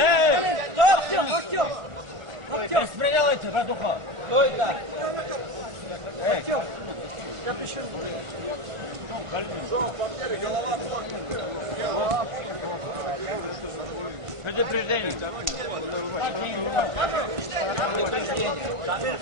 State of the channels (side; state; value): left; late; 1.4 ms